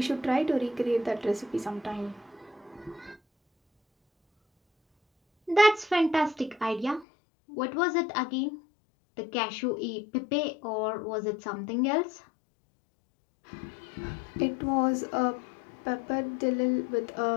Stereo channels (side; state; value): right; drops out; at 7.1 s